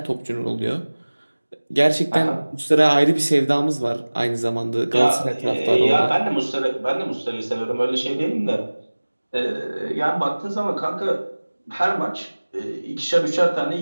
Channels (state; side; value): inverted; both; correlation -1.00